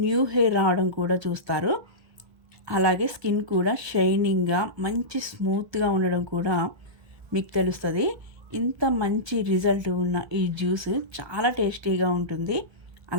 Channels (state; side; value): late; left; 1.3 ms